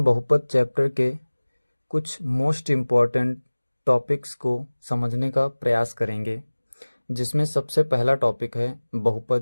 बहुपद चैप्टर के कुछ मोस्ट इम्पॉर्टेंट टॉपिक्स को समझने का प्रयास करेंगे, जिसमें सबसे पहला टॉपिक है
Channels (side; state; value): both; inverted; correlation -1.00